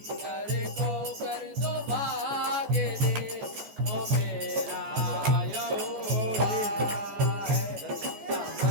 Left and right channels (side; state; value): left; late; 14 ms